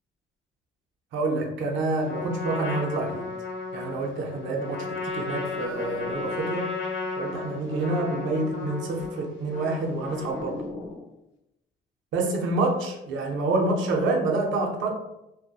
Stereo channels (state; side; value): normal; both; correlation 0.35